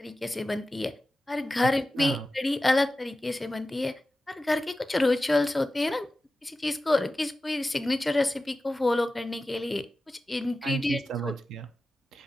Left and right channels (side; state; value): both; normal; correlation 0.94